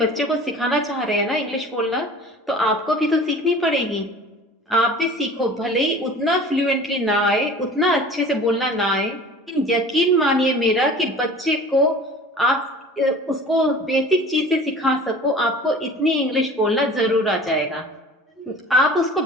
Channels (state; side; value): normal; both; correlation 0.42